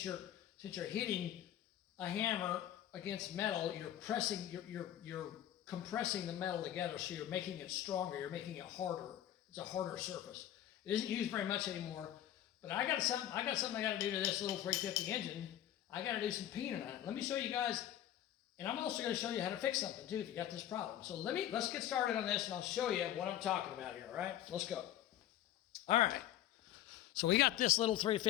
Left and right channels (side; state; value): right; quieter; 12.1 dB